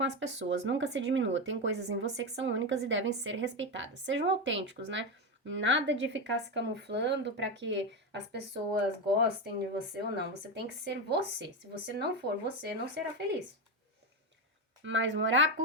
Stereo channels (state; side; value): normal; both; correlation 0.13